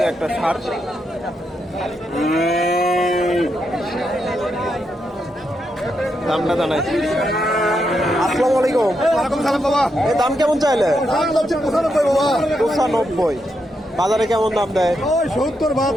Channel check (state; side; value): normal; both; correlation 0.82